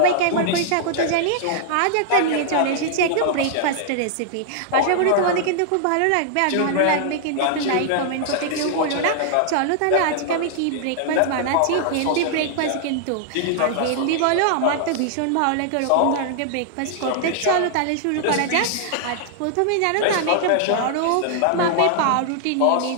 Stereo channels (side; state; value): both; different; correlation -0.01